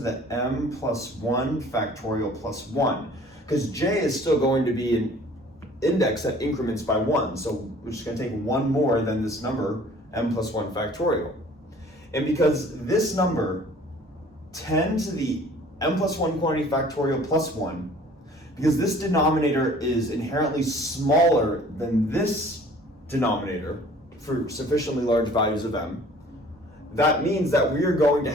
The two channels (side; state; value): both; normal; correlation 0.51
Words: m plus 1 factorial plus 1, because j is still going to be an index that increments by 1, so we're just going to take 1 more than this number, m plus 1 factorial. And because this number, 10 to the m plus 1 quantity factorial plus 1, because this denominator is inherently smaller than this denominator for sufficiently large values of m, that means that we are going to